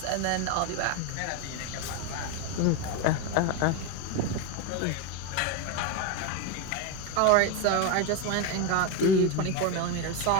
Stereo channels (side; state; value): both; different; correlation 0.03